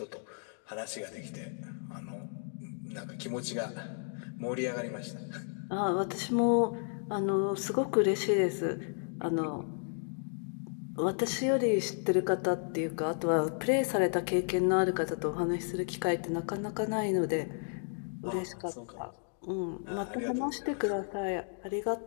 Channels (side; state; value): right; silent; 56 dB below the other